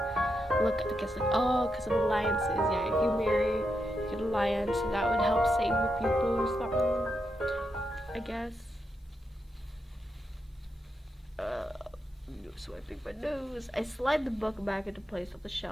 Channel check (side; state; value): both; normal; correlation 0.84